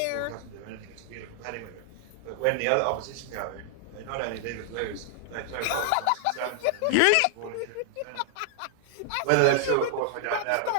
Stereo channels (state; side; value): different; both; correlation -0.01